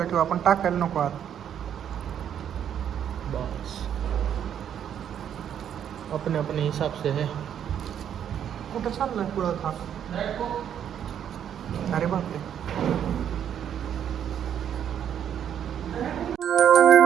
ठेवू आपण, टाकायला नको आत. बस अपने अपने हिसाब से है. कुठं चाललाय पुढं हा? अरे बापरे.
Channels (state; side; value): quieter; left; 9.3 dB